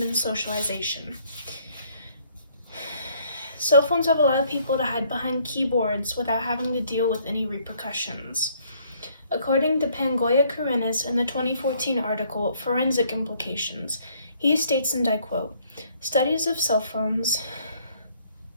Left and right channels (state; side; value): inverted; both; correlation -0.64